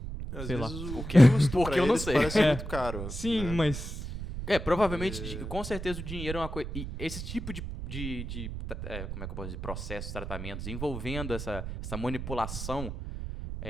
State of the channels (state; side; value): noise; right; rumble, 7 dB below the sound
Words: Às sei vezes lá. o custo Porque pra eu não eles sei. parece muito caro. Sim, né? mas... Provavelmente, com certeza o dinheiro é uma coisa... E esse tipo de como é que eu posso dizer? Processos, tratamentos, envolvendo essa manipulação,